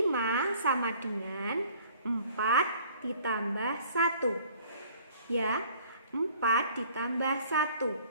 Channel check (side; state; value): both; inverted; correlation -0.54